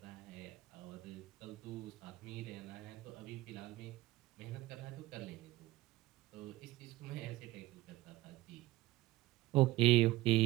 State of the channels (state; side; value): quieter; left; 17.6 dB